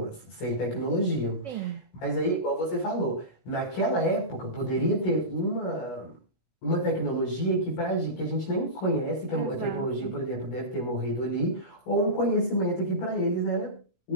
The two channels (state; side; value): late; right; 16 ms